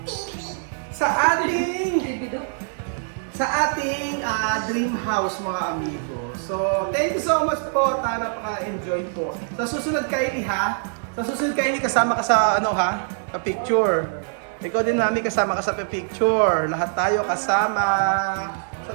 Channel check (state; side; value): silent; left; digital silence